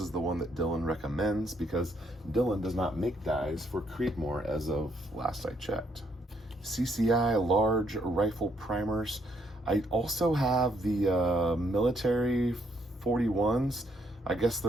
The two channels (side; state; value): both; normal; correlation 0.71